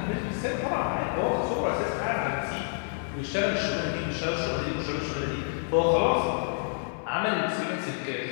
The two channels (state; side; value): silent; right; 59 dB below the other